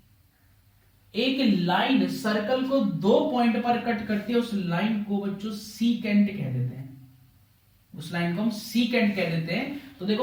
एक लाइन सर्कल को दो पॉइंट पर कट करती है, उस लाइन को बच्चों सीकेंट कह देते हैं, उस लाइन को हम सीकेंट कह देते हैं। तो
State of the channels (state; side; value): identical; both; correlation 1.00